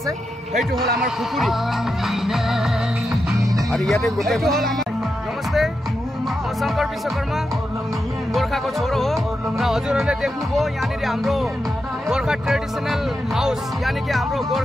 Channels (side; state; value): both; normal; correlation 0.87